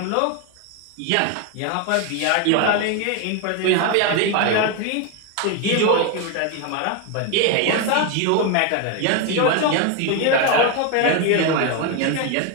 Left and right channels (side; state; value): both; different; correlation 0.01